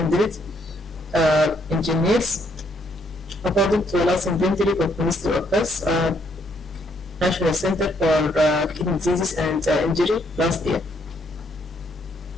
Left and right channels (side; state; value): both; normal; correlation 0.71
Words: engineers, according to the last inventory of Ministry of Health, National Center for Kidney Diseases and Injury last year.